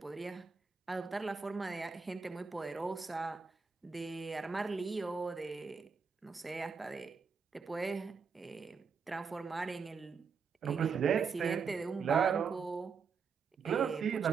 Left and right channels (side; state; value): left; quieter; 5.6 dB